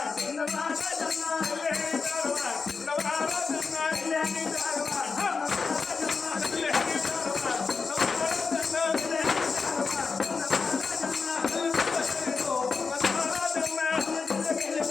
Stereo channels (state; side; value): quieter; right; 4.9 dB